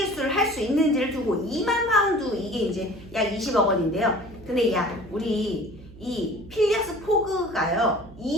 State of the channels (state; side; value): noise; right; hum, 19 dB below the sound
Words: 할 수 있는지를 두고 2만 파운드, 이게 이제 약 20억 원인데요. 근데 우리 이 필리어스 포그가요,